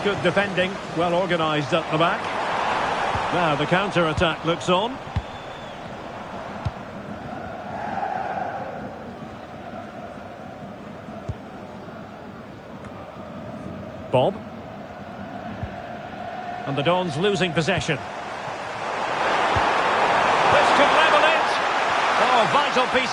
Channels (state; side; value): identical; both; correlation 1.00